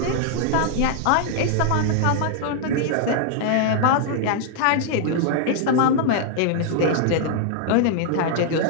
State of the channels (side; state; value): both; different; correlation -0.01